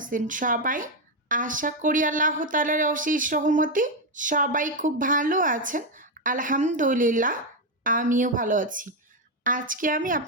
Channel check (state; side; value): normal; both; correlation 0.06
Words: সবাই? আশা করি আল্লাহ তাআলার অশেষ রহমতে সবাই খুব ভালো আছেন। আলহামদুলিল্লাহ, আমিও ভালো আছি। আজকে আমি